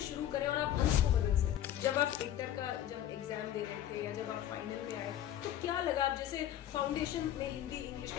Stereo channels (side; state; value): right; quieter; 11.7 dB